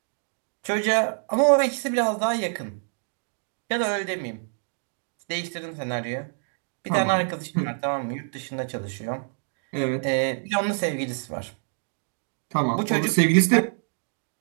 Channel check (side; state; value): left; silent; 61 dB below the other